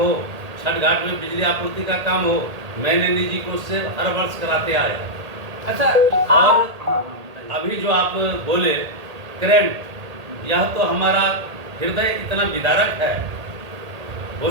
छठ घाट में बिजली आपूर्ति का काम हो, मैंने निजी कोष से हर वर्ष कराते आए। अच्छा, और अभी जो आप बोले करंट, यह तो हमारा हृदय इतना विदारक है। हो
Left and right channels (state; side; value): late; left; 1.8 ms